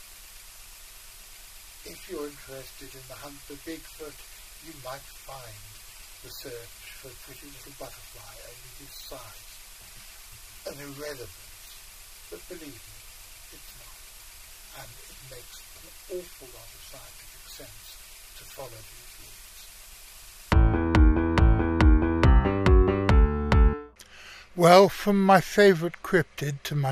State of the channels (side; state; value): both; identical; correlation 1.00